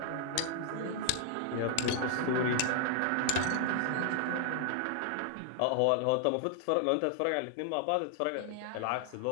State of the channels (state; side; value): different; both; correlation 0.00